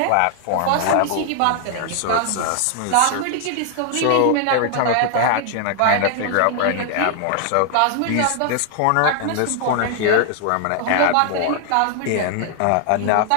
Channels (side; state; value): both; different; correlation 0.00